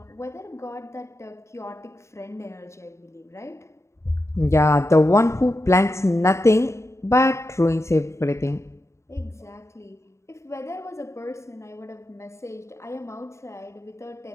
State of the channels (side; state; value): right; late; 0.14 ms